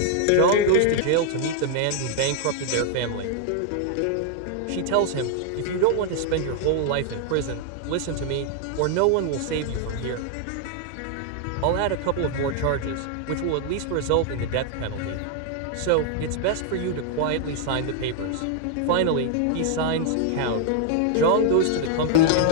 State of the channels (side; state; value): both; different; correlation 0.00